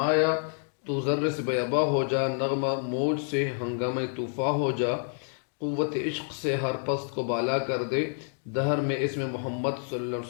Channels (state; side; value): silent; right; 59 dB below the other